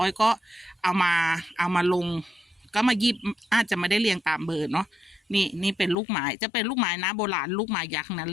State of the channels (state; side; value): drops out; right; at 6.0 s